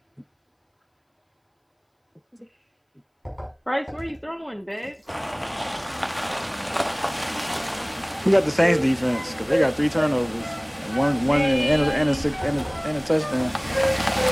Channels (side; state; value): both; identical; correlation 1.00